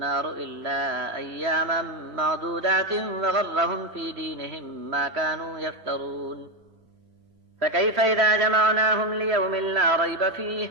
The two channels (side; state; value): left; late; 3.2 ms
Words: إلا أياما معدودات وغرهم في دينهم ما كانوا يفترون فكيف إذا جمعناهم ليوم لا ريب فيه